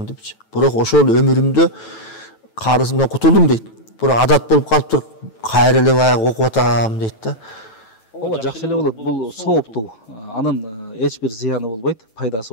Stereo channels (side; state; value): right; late; 9.1 ms